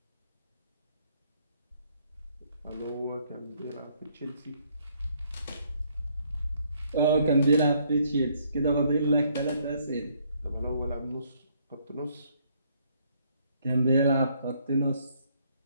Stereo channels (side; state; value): both; inverted; correlation -0.68